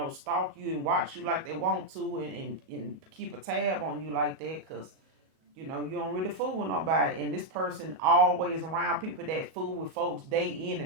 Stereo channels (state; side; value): late; left; 37 ms